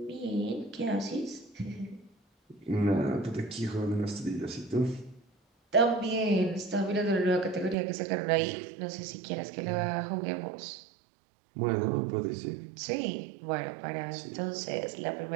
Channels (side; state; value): left; drops out; at 7.8 s